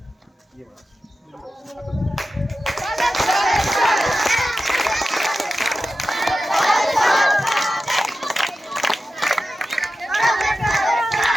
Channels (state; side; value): normal; both; correlation 0.93